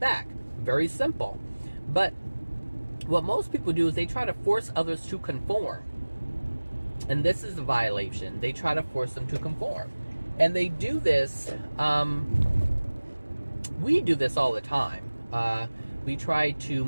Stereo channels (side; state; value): both; inverted; correlation -1.00